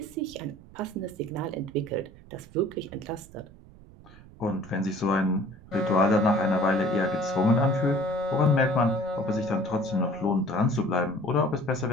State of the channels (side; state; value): right; noise; rumble, 21 dB below the sound